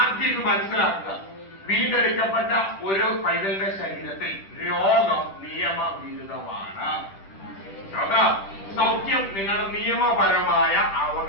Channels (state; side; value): late; right; 10 ms